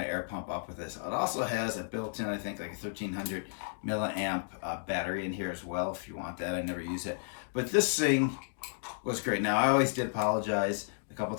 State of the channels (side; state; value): right; silent; digital silence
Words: air pump up with this. It also has a built-in, I think, like a 1300 milliamp battery in here as well, if you want that. I never use it. But this thing was great. Now, I always did apologize a couple